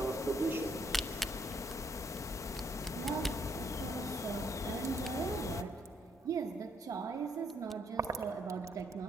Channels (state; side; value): normal; both; correlation 0.70